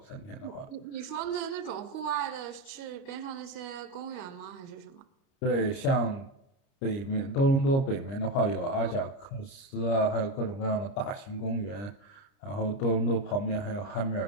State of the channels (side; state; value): right; late; 30 ms